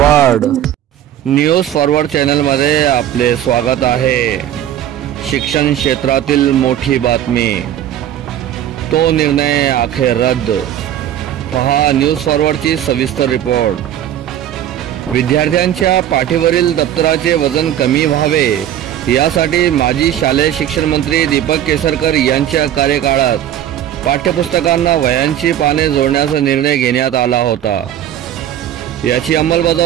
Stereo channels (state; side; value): quieter; left; 11.3 dB